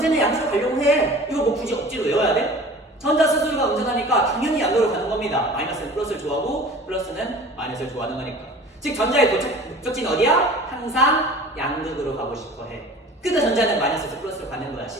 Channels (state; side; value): normal; both; correlation 0.42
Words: 양극으로 가려고 해. 이거 뭐 굳이 억지로 외워야 돼? 전자 스스로가 음전하니까 당연히 양극으로 가는 겁니다. 마이너스는 플러스를 좋아하고 플러스는 마이너스를 좋아하는 거니까. 즉 전자의 목적지는 어디야? 항상 양극으로 가고 싶어 해. 그러니까 전자는 마이너스에서 플러스로 가는 거야.